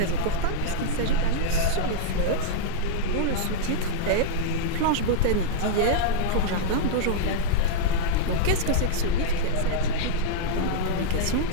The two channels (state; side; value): different; both; correlation -0.02